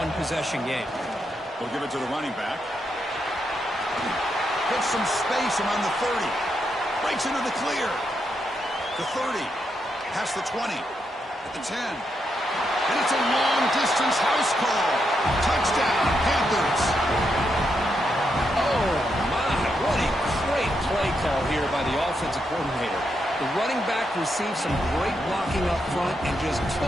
game. We'll give it to the running back. Gets some space around the 30. Breaks into the clear. The 30. Past the 20. At the 10. And it's a long-distance house call. Touchdown, Panthers. Oh, my. What a great play call here by the offensive coordinator. The running back received some great blocking up front and just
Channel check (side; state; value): both; normal; correlation 0.82